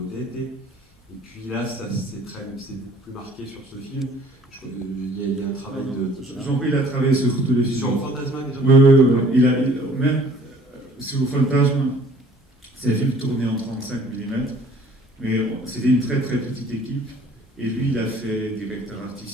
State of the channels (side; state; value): both; normal; correlation 0.54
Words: Et puis là, c'est beaucoup plus marqué sur ce film. Il y a un travail de... Jean-Pierre, il a travaillé sur tous les films. Sur Fantasma, déjà. Oui. Même sur Fantasma, c'est un film tourné en 35 mm. Mais c'était une très très petite équipe, et lui il a fait directeur